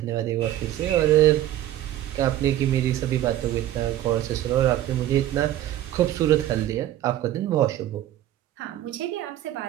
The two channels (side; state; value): left; quieter; 13.1 dB